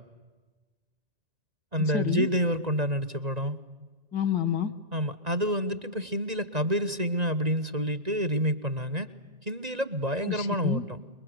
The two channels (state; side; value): late; left; 1.9 ms